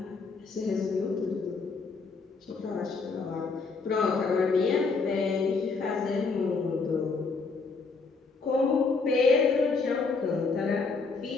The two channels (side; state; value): right; quieter; 4.4 dB